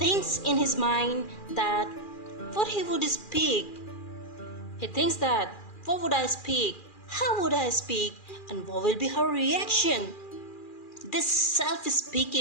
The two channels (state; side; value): late; right; 2.4 ms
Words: in his mind that what he would speak. He thinks that what would I speak? How would I speak? And what will be her reaction? This